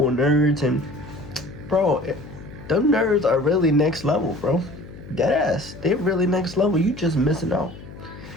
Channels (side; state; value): left; noise; hum, 16 dB below the sound